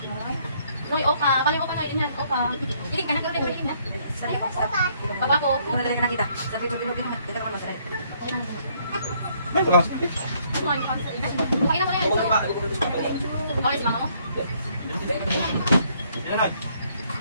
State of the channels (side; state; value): both; inverted; correlation -0.67